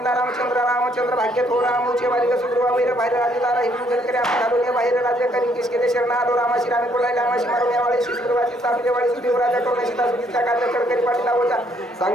रामचंद्र भाग्य थो रामूचे बालिका सुग्रीवा वैर बाहेर राजदारा हिंदू जनकरे आपण घालून बाहेर राज्य करी किस केले शरण आलो रामाशी रामी कोलायला रामाशी मारुण्यावाळी सुग्रीवाची सापलेवाळी सुदेवराजा करून सीता सुधीचा कार्य करकरी पाठीला होता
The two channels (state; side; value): normal; both; correlation 0.68